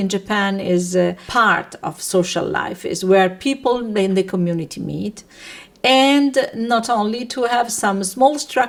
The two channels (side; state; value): both; identical; correlation 1.00